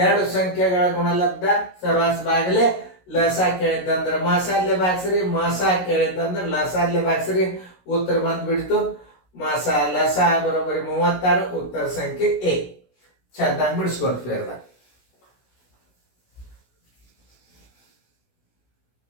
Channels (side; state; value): right; late; 16 ms